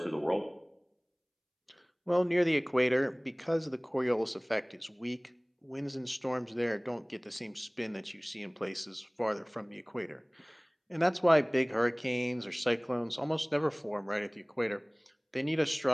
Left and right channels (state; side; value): identical; both; correlation 1.00